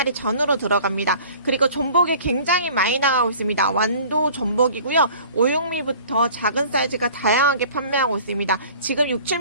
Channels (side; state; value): both; inverted; correlation -0.47